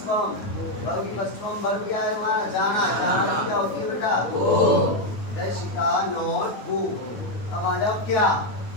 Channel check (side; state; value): right; late; 9.5 ms